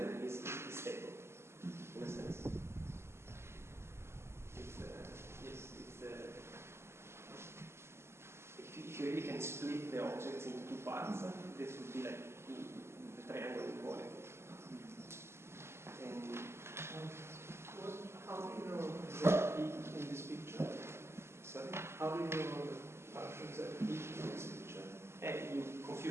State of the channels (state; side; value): late; left; 0.12 ms